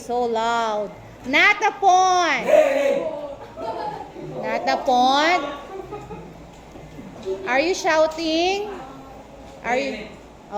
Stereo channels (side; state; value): both; identical; correlation 1.00